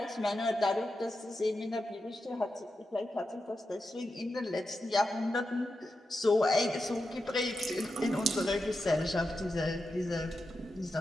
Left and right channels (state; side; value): normal; both; correlation 0.89